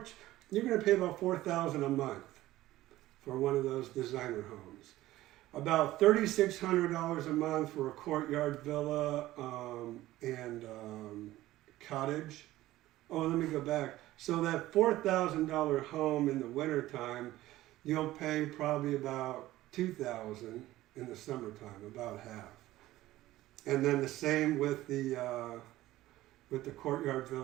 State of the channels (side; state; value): left; quieter; 16.0 dB